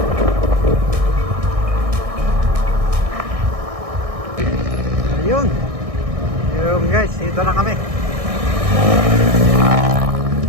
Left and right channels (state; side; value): late; left; 1.6 ms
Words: Ayun. Ayun guys, dito na kami.